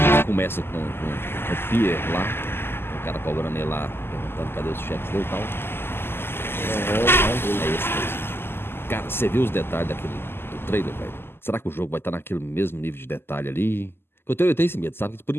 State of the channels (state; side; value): late; right; 0.11 ms